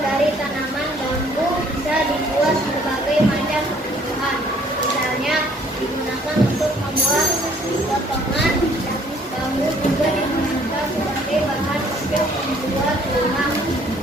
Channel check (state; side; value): normal; both; correlation 0.60